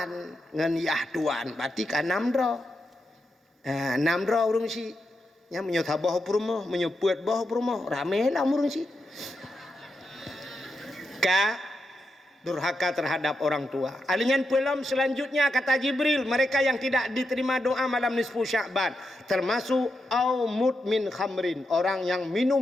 ngan yah tuan. Berarti kan namdro. Namdro urungsi. Nya menyota boh purmo, menyebut boh purmo, ramelah murungsi. Durhaka terhadap orang tua. Alingan pelam selanjutnya kata Jibril, mereka yang tidak diterima doa malam nisfu Sya'ban, termasuk au mudmin khamrin, orang yang minum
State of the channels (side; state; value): both; normal; correlation 0.85